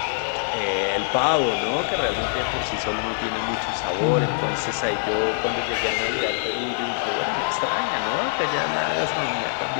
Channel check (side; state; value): right; silent; 63 dB below the other